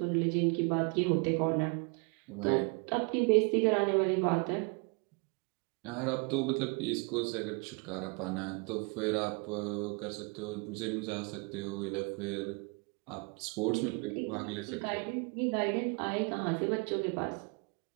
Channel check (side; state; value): left; quieter; 32.7 dB